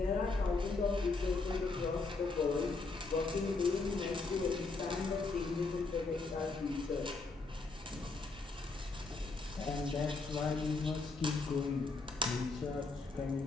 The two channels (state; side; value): quieter; right; 3.8 dB